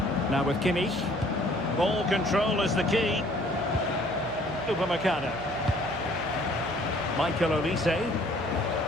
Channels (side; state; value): left; noise; hum, 17 dB below the sound